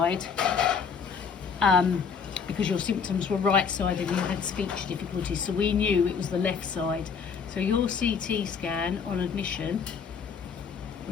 Because your symptoms were right-sided and you had speech difficulties, so we knew it was the left side. So your CT scan on admission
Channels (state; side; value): quieter; right; 6.2 dB